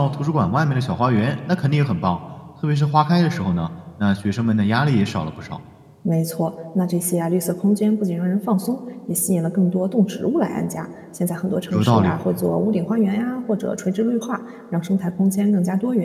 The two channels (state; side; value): identical; both; correlation 1.00